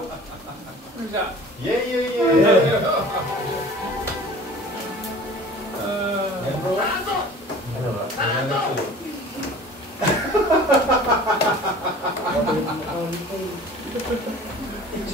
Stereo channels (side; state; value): both; normal; correlation 0.44